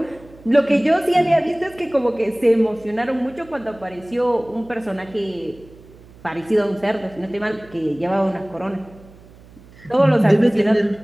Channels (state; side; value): noise; right; hum, 23 dB below the sound